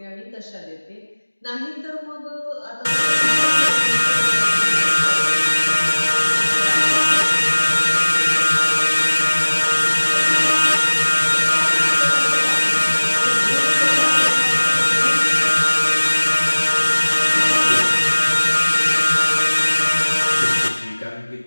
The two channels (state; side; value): inverted; both; correlation -1.00